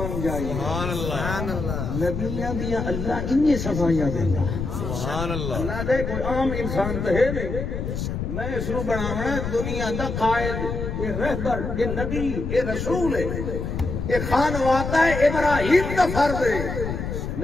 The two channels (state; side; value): noise; left; rumble, 4 dB below the sound